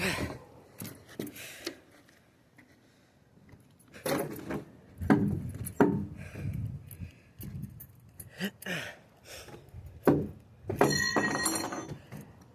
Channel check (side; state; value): both; identical; correlation 1.00